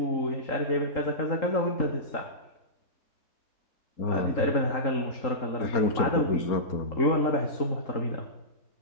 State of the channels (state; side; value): late; right; 3.8 ms